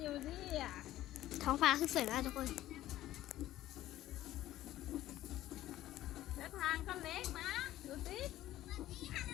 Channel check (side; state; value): right; quieter; 14.3 dB